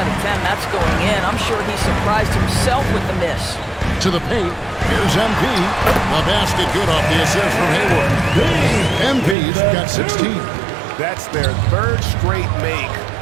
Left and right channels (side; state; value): left; drops out; at 9.3 s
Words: of 10, that's going in. I'm sure he surprised himself with the miss. To the paint. Here's MP. The basket good off the assist from Hayward. MP's got 16. That's their 3rd straight make